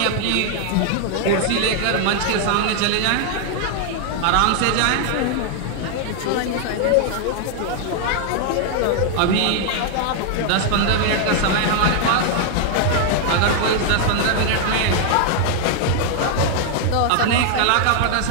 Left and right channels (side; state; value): both; different; correlation 0.00